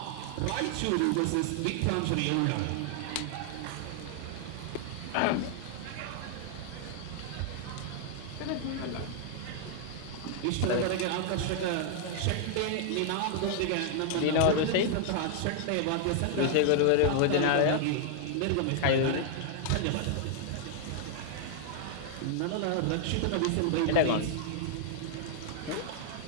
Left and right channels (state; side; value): different; both; correlation 0.00